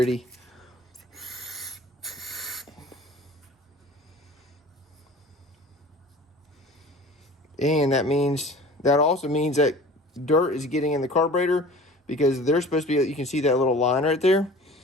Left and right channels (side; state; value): both; normal; correlation 0.43